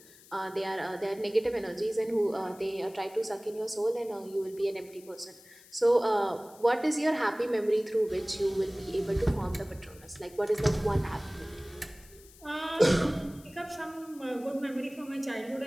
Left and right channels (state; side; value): noise; left; hiss, 23 dB below the sound